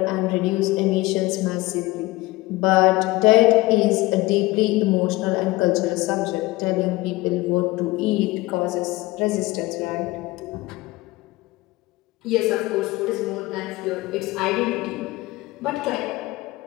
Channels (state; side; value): quieter; right; 20.1 dB